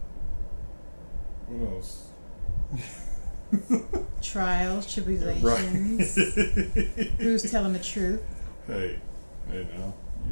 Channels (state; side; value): inverted; both; correlation -1.00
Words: What else? Trials, tribulations. Right. Who's telling the truth? Hey now,